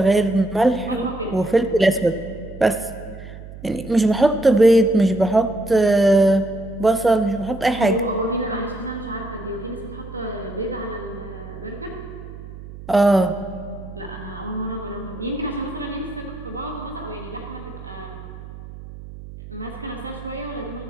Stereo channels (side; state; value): right; noise; hum, 14 dB below the sound